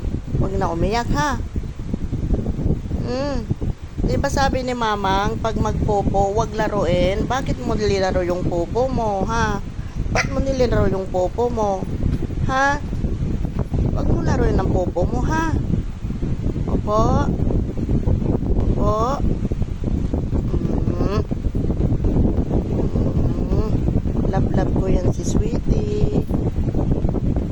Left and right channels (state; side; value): identical; both; correlation 1.00